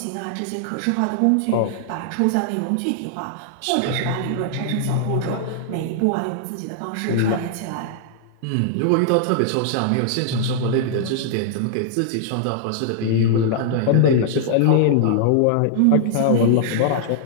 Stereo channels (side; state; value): both; different; correlation -0.01